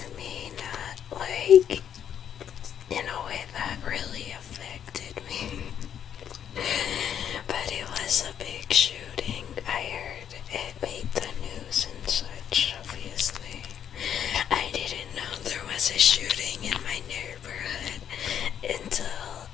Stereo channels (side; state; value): right; quieter; 9.1 dB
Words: me, not like in a way that really affected me. But it was a big shooting. I heard it made the news and such, obviously. I didn't know there was a shooting in my neighborhood until